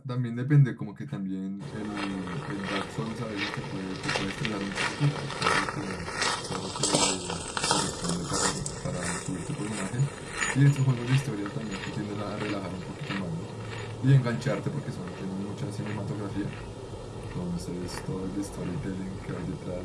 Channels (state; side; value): identical; both; correlation 1.00